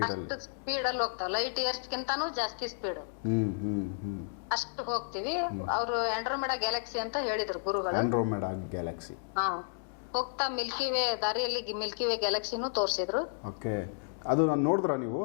ಅಷ್ಟು ಸ್ಪೀಡ್ ಅಲ್ಲಿ ಹೋಗ್ತಾವ, ಲೈಟ್ ಇಯರ್ಸ್ಗಿಂತಾನು ಜಾಸ್ತಿ ಸ್ಪೀಡ್ ಅಷ್ಟು ಹೋಗ್ತಿವಿ. ಅವರು ಆಂಡ್ರೋಮೆಡಾ ಗ್ಯಾಲಕ್ಸಿ ಅಂತ ಹೇಳಿದ್ರು ಗುರುಗಳು. Andromeda Galaxy. ಹಾ, ಹೋಗ್ತಾ ಮಿಲ್ಕಿ ವೇ ದಾರಿಯಲ್ಲಿ ಮಿಲ್ಕಿ ವೇ ಗ್ಯಾಲಕ್ಸಿನೂ ತೋರಿಸಿದ್ರು. ಓಕೆ, ಅದು ನಾನು ನೋಡಿದ್ರಾ ನೀವು?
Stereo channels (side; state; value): right; silent; digital silence